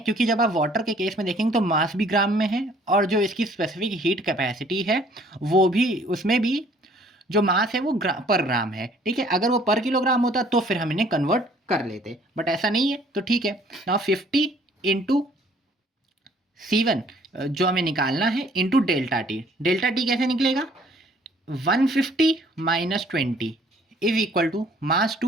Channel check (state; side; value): normal; both; correlation 0.58